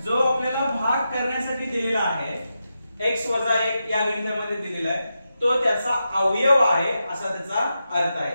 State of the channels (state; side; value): inverted; both; correlation -0.88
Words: जो आपल्याला भाग करण्यासाठी दिलेला आहे x - 1 या गणितामध्ये दिलेला आहे तो त्याचा अवयव आहे असा त्याचा अर्थ आहे।